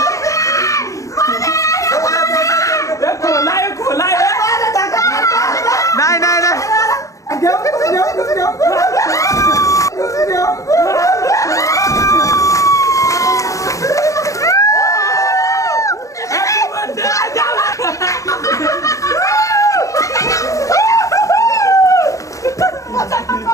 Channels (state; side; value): late; right; 0.16 ms